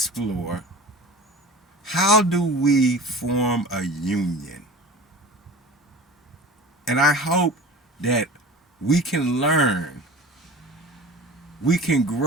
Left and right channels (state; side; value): normal; both; correlation 0.37